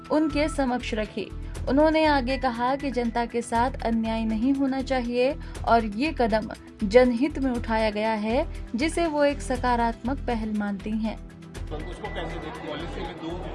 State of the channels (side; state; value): both; identical; correlation 1.00